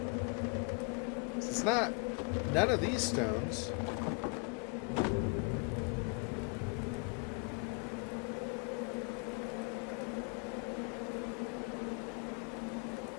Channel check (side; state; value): right; quieter; 35.1 dB